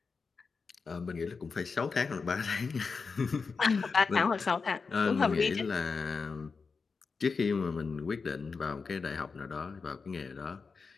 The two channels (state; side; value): quieter; right; 4.9 dB